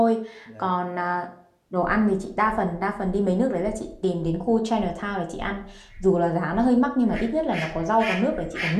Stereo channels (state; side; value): identical; both; correlation 1.00